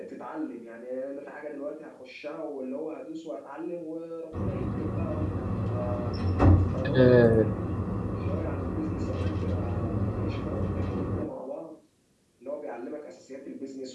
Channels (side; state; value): both; identical; correlation 1.00